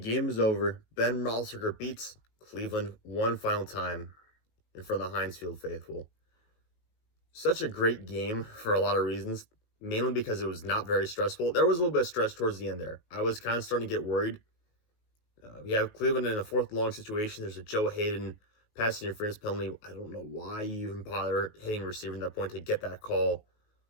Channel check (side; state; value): right; late; 19 ms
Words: is over. Ben Roethlisberger beats Cleveland one final time in front of the Heinz Field faithful. Such a great game for a lot of reasons, mainly because it was not very stressful. There was a little bit of stress towards the end there. I was kind of starting to get worried. We have Cleveland in a fourth long situation. There's a Joe Haden pass interference penalty. I don't know why you even bother hitting a receiver at that point to get that call.